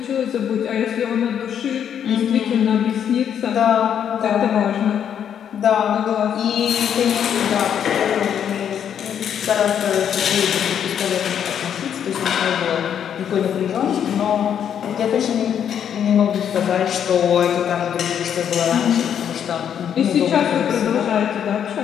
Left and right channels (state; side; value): quieter; right; 8.8 dB